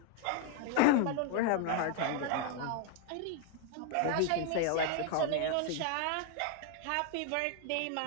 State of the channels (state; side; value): different; both; correlation 0.00